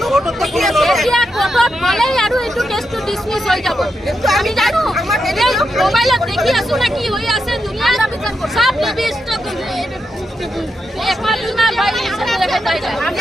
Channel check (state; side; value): normal; both; correlation 0.85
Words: এতিয়া কোৰ্টত গ'লেই আৰু এইটো কেছটো ডিছমিছ হৈ যাব। আমি জানো মোবাইলত দেখি আছো না কি হৈ আছে দুনিয়াত সব ৰেপিষ্টক